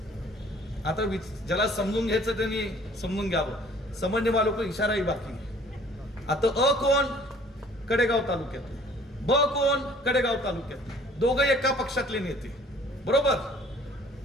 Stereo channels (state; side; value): normal; both; correlation 0.54